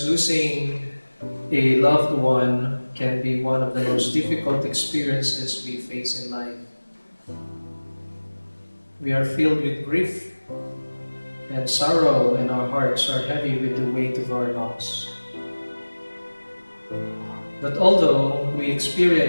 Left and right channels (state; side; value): inverted; both; correlation -1.00